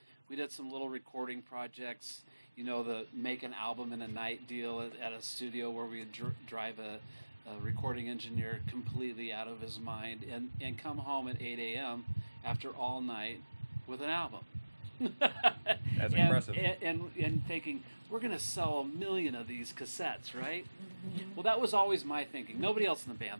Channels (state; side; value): inverted; both; correlation -1.00